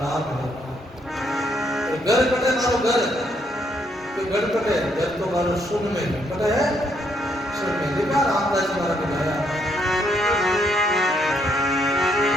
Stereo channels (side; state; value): both; normal; correlation 0.73